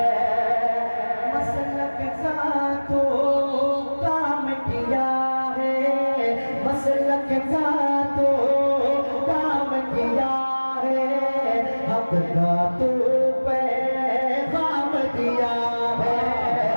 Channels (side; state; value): both; inverted; correlation -1.00